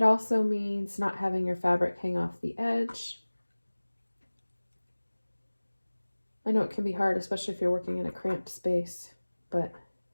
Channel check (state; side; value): inverted; both; correlation -1.00